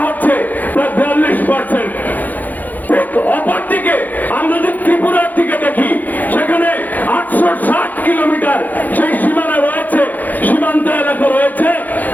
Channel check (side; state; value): right; late; 0.083 ms